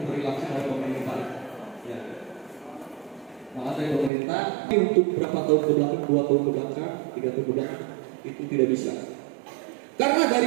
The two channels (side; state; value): left; drops out; at 4.1 s